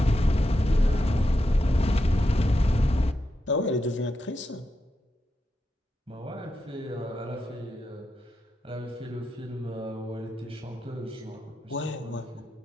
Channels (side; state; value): both; normal; correlation 0.86